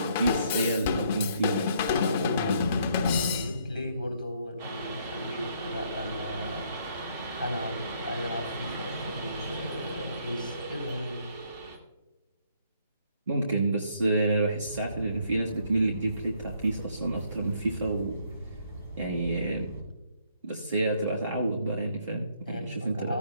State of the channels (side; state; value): both; inverted; correlation -0.68